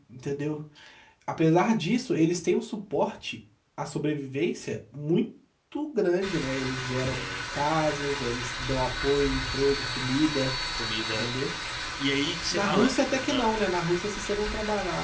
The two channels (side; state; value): both; identical; correlation 1.00